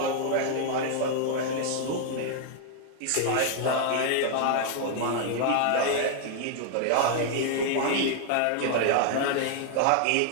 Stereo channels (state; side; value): different; both; correlation 0.00